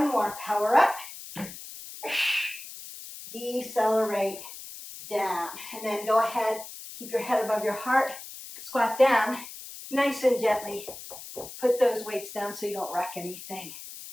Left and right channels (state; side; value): noise; left; hiss, 13 dB below the sound